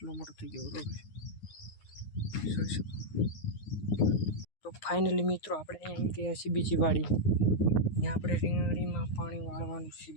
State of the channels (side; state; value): right; late; 9.6 ms